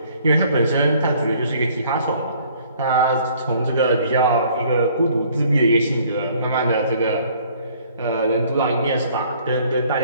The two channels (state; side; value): inverted; both; correlation -0.58